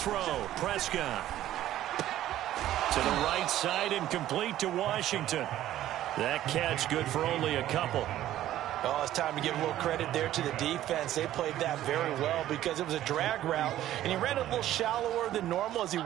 Prescott. To To the right side and complete to Washington. That catch good for only a couple. Oh, it's time to give a little credit there to the defense. They played that very well because it was a drag route, and he ran a little shallower than normal as he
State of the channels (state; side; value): quieter; left; 13.2 dB